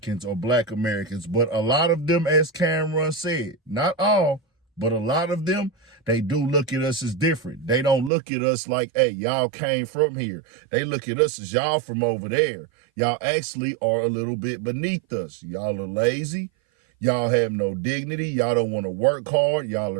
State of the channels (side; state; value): left; drops out; at 8.1 s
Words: or black Americans, but a lot of them, as Camron said, not all, but a lot of them, they do look at us as different. They don't look at us like, hey, y'all came from here. They look at us as y'all from over there. Y'all actually are a little bit beneath us. Y'all are lazy. Y'all have no dignity. Y'all don't want to work hard. Y'all